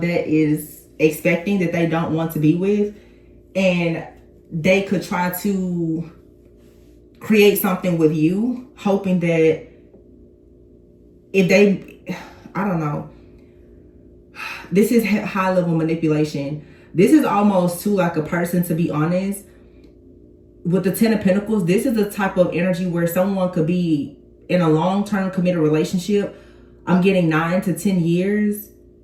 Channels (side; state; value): both; identical; correlation 1.00